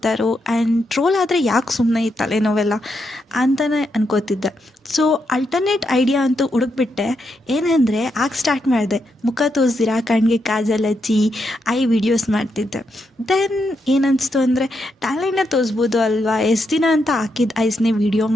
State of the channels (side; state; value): both; normal; correlation 0.82